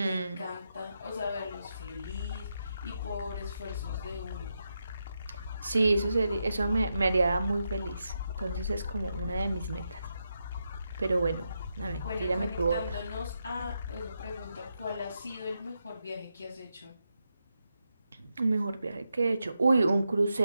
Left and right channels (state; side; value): inverted; both; correlation -0.85